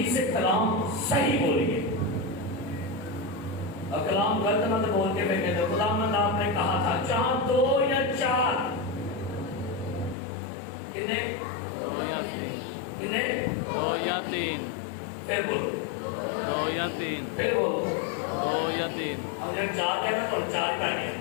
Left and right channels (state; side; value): drops out; right; at 10.2 s